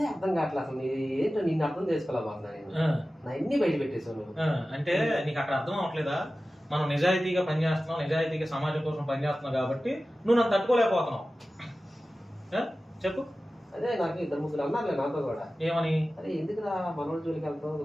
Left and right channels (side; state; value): both; normal; correlation 0.95